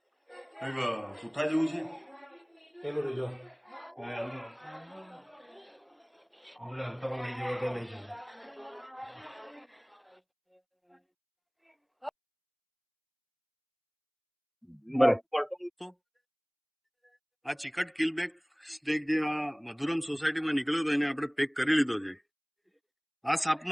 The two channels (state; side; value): identical; both; correlation 1.00